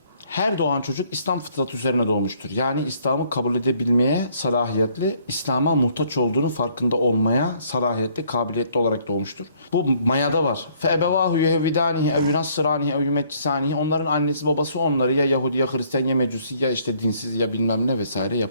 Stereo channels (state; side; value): inverted; both; correlation -0.64